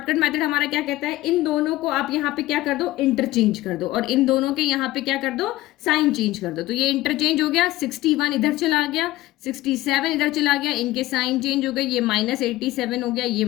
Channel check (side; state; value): right; quieter; 17.1 dB